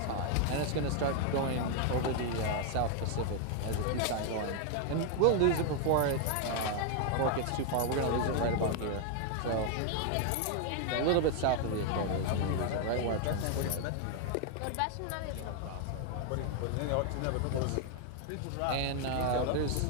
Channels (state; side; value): different; both; correlation 0.00